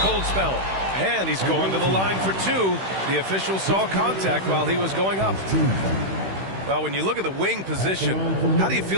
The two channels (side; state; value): left; late; 16 ms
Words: spell. And he's going to the line for 2. The official saw contact while he was going up. Well, when you look at the wing position, how do you